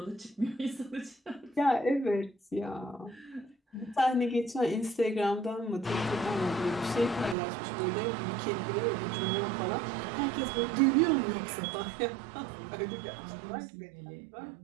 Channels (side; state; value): left; drops out; at 7.4 s